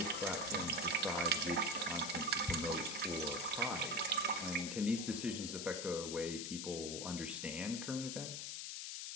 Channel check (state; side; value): noise; left; hiss, 4 dB below the sound